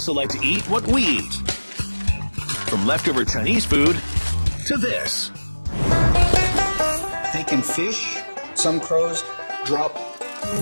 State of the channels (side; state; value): both; inverted; correlation -1.00